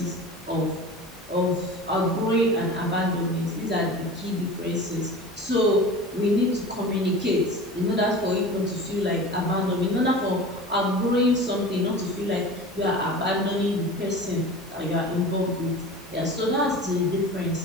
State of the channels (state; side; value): normal; both; correlation 0.35